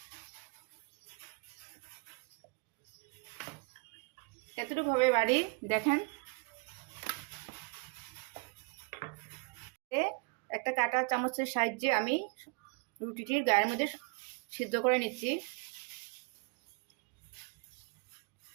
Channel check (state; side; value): quieter; left; 32.2 dB